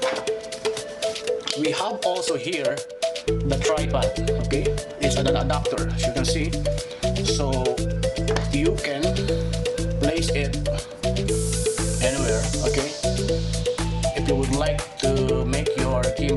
we have also here the tripod. Okay, it's an adapter, as you can see, so you can place it anywhere. Okay, if you would like to make your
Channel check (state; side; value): identical; both; correlation 1.00